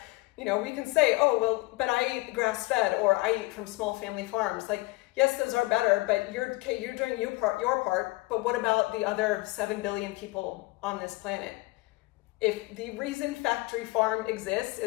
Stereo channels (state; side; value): quieter; right; 22.2 dB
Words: We can say, oh, well, but I eat grass-fed, or I eat from small family farms. Like, yes, those are better, but you're doing your part, but what about the other 7 billion people on this planet? If the reason factory farm exists